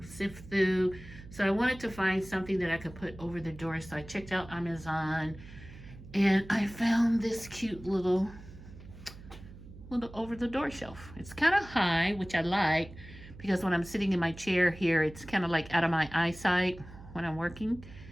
sift through. So I wanted to find something that I could put over the door. So I checked out Amazon and I found this cute little over the door shelf. It's kind of high, which I like, because when I'm sitting in my chair here, it's kind of like out of my eyesight when I'm working.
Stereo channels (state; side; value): noise; right; hum, 17 dB below the sound